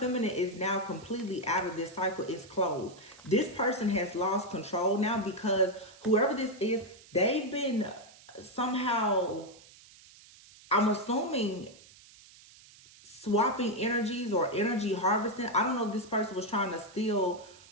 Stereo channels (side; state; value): right; noise; hiss, 23 dB below the sound